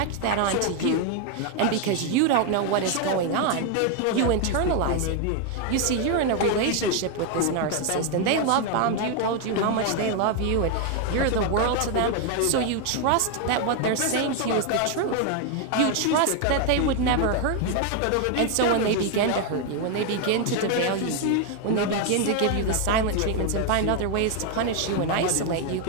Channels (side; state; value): both; different; correlation 0.01